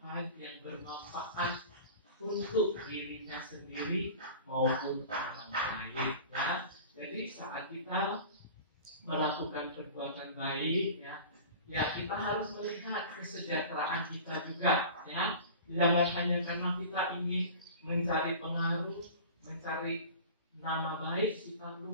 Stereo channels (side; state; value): both; inverted; correlation -0.38